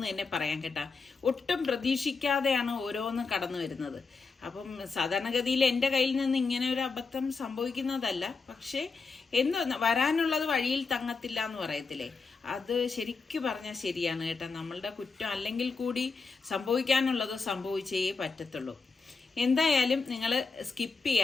തന്നെ പറയാൻ കേട്ടാ. ഒട്ടും പ്രതീക്ഷിക്കാതെയാണ് ഓരോന്നും കടന്നു വരുന്നത്. അപ്പം സാധാരണഗതിയിൽ എൻ്റെ കയ്യിൽ നിന്ന് ഇങ്ങനെ ഒരു അബദ്ധം സംഭവിക്കുന്നതല്ല, പക്ഷേ എന്തോ വരാനുള്ളത് വഴിയിൽ തങ്ങത്തില്ല എന്ന് പറയത്തില്ലേ, അത് ശരിക്കു പറഞ്ഞാൽ ശരിയാണ് കേട്ടോ. നമ്മളുടെ കുറ്റം അല്ലെങ്കിൽ കൂടി സംഭവിക്കാനുള്ളത് സംഭവിച്ചേ പറ്റത്തുള്ളൂ. എന്തായാലും നിങ്ങൾ സ്കിപ്പ്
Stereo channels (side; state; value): right; quieter; 4.5 dB